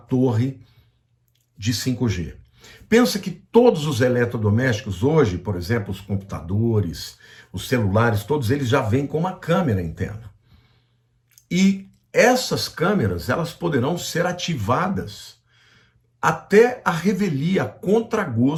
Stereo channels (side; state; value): both; identical; correlation 1.00